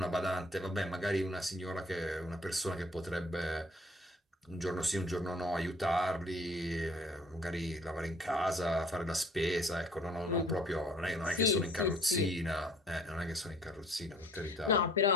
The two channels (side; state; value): both; normal; correlation 0.55